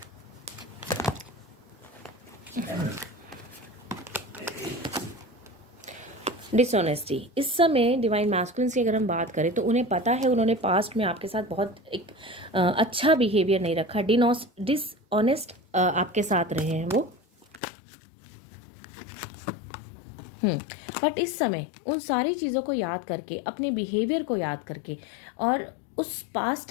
डिसऑनेस्टी, इस समय डिवाइन मैस्कुलिन्स की अगर हम बात करें तो उन्हें पता है उन्होंने पास्ट में आपके साथ बहुत एक अच्छा बिहेवियर नहीं रखा, डिसऑनेस्ट आपके साथ रहे हैं वो। बट इस समय उन सारी चीज़ों को याद करके, अपने बिहेवियर को याद करके और उस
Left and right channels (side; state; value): right; drops out; at 17.6 s